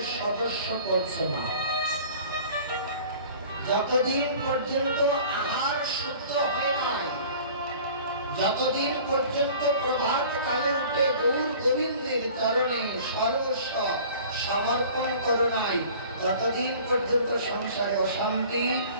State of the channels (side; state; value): both; inverted; correlation -0.46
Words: সদস্য করছে না, যতদিন পর্যন্ত আহার শুদ্ধ হয় নাই, যতদিন পর্যন্ত প্রভাত কালে উঠে গৌর গোবিন্দের চরণে সর্বস্ব সমর্পণ করো নাই, ততদিন পর্যন্ত সংসারে অশান্তি,